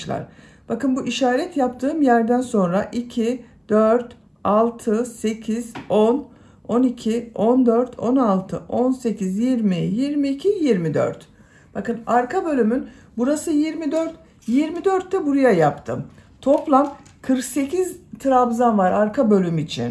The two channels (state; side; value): identical; both; correlation 1.00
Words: Bakın bu işaret yaptığım yerden sonra 2, 4, 6, 8, 10, 12, 14, 16, 18, 20, 22, 24. Bakın arka bölümün burası 24. 24 de buraya yaptım. Toplam 48 trabzan var arka bölüm